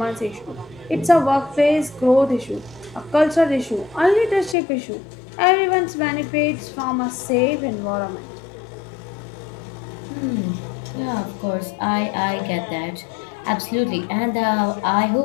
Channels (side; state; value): right; drops out; at 4.5 s